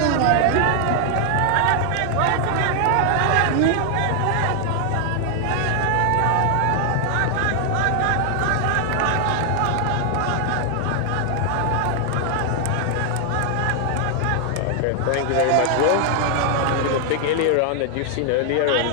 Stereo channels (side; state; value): both; different; correlation 0.00